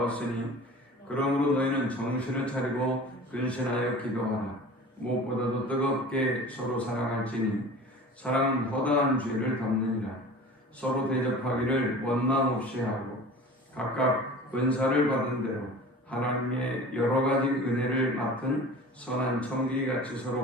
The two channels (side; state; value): both; normal; correlation 0.39